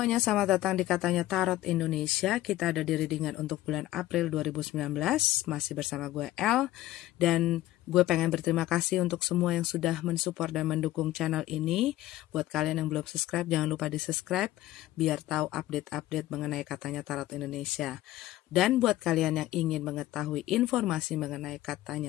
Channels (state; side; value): quieter; right; 15.6 dB